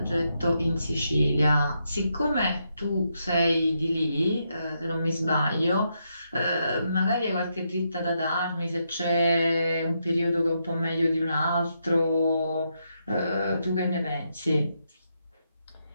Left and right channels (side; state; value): both; inverted; correlation -0.81